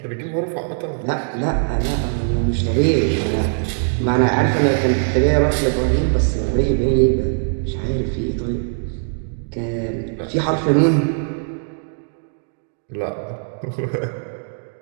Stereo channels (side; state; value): left; silent; digital silence